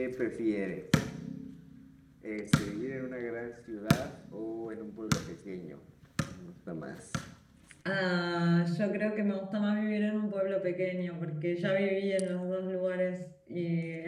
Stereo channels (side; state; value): both; identical; correlation 1.00